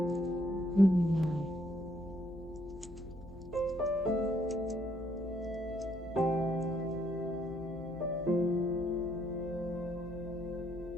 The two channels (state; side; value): noise; left; hum, 18 dB below the sound